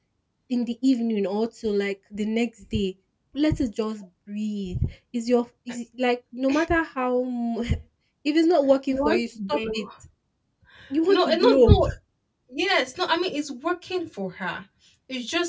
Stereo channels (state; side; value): identical; both; correlation 1.00